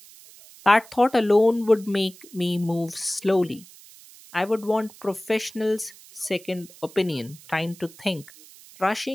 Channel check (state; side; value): noise; right; hiss, 22 dB below the sound